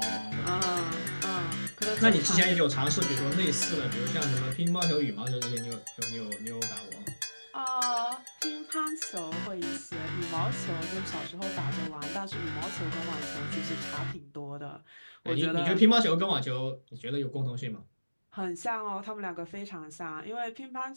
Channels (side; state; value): both; inverted; correlation -1.00